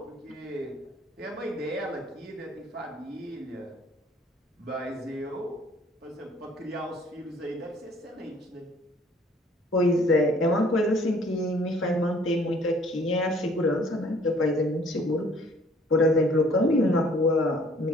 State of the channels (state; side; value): normal; both; correlation 0.57